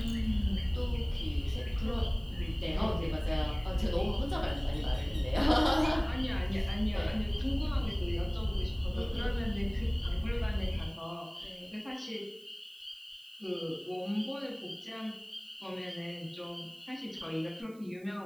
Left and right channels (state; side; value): noise; right; hiss, 28 dB below the sound